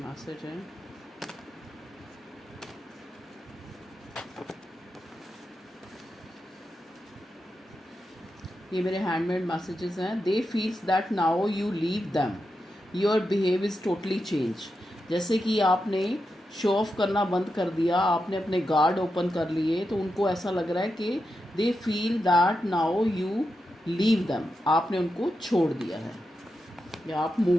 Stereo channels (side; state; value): both; normal; correlation 0.88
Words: मैसेज हैं। ये मेरे हैंडमेड मैसेजेस हैं। They feels that now you leave them, your behave is totally change. जैसे कि आपने शो ऑफ करना बंद कर दिया, आपने अपने गार्ड ओपन कर लिए, तो उनको ऐसा लग रहा है कि they feel that now you leave them, आपने उनको छोड़ दिया है या आप